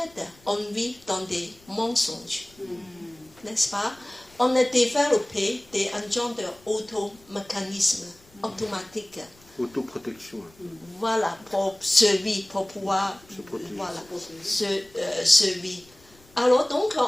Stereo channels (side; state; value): left; noise; rumble, 28 dB below the sound